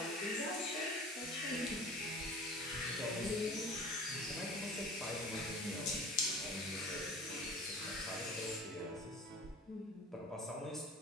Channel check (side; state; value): both; normal; correlation 0.41